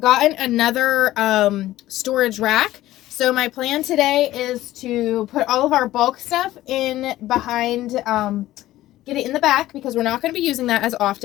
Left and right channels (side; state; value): right; quieter; 15.3 dB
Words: another storage rack. So my plan today is to put all of our bulk stuff in behind, get it in the back because we're not going to be using that as